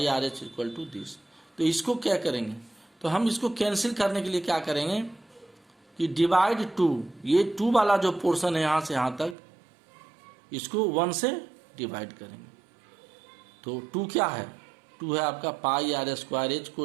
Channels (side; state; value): left; drops out; at 9.3 s